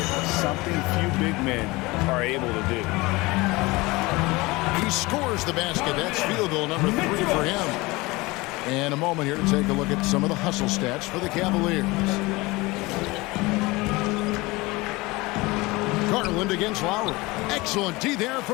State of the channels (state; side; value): quieter; right; 22.5 dB